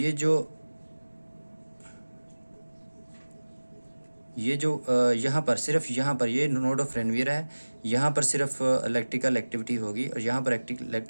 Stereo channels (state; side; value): inverted; both; correlation -1.00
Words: जो यहाँ पर सिर्फ यहाँ पर ये नोड ऑफ रेनवियर है, यहाँ पर सिर्फ इलेक्ट्रिकल एक्टिविटी होगी और यहाँ पर